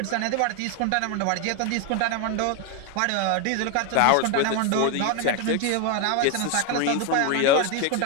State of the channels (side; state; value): both; different; correlation 0.01